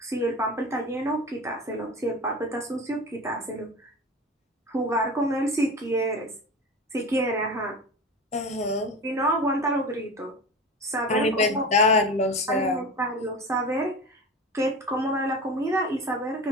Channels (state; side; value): normal; both; correlation 0.30